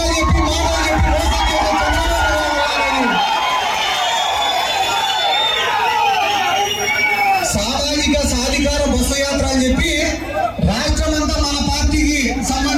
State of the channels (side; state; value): both; identical; correlation 1.00